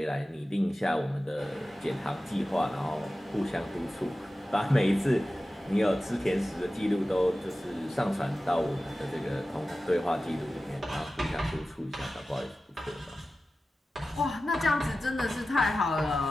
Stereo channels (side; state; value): both; normal; correlation 0.95